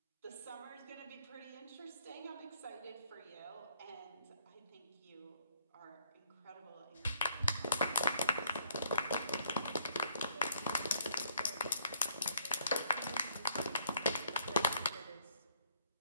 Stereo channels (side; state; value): both; inverted; correlation -0.65